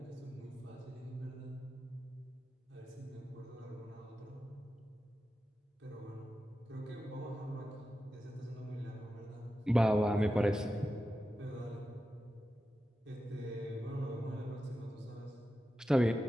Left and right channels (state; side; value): normal; both; correlation 0.91